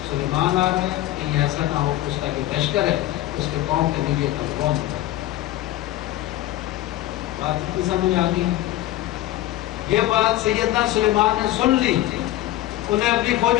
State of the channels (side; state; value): right; quieter; 15.1 dB